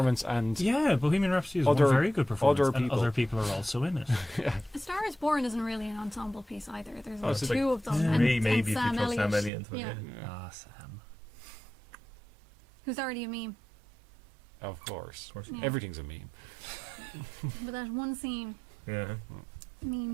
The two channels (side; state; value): left; drops out; at 9.5 s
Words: and Bohemian Rhapsody is one very good performance, and other people are also in it. A Star Is Born isn't really an ensemble piece either. There's it's 2 of them. Three, and maybe, if Sam you throw Elliott. Sam Elliott into it. Yeah. Sam. Who's already a meme. of course, Yeah. everything's a meme. But that one scene Yeah.